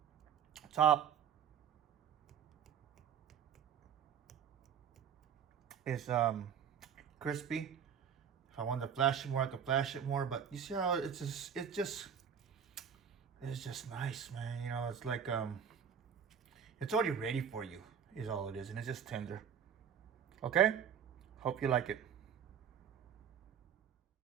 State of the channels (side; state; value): left; quieter; 8.0 dB